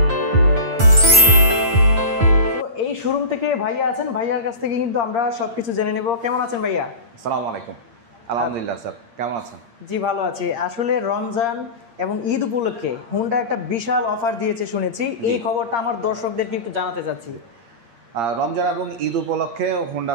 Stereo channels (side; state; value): left; late; 8.6 ms